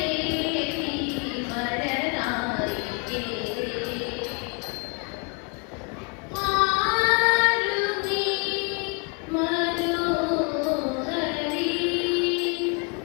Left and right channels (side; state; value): right; quieter; 35.2 dB